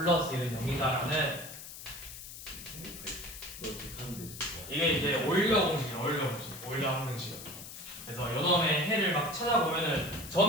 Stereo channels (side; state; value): left; noise; hiss, 12 dB below the sound